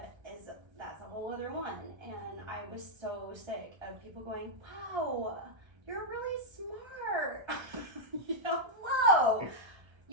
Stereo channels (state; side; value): late; left; 1.3 ms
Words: that's a whole other one. And I was so sick of people going, wow, you're really smart. Whoa,